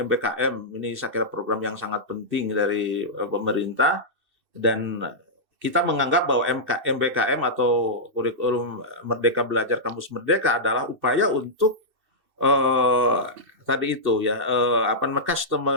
Ini saya kira program yang sangat penting dari pemerintah, dan kita menganggap bahwa MBKM atau kurikulum Merdeka Belajar Kampus Merdeka adalah upaya untuk tadi itu ya,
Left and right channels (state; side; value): late; left; 2.6 ms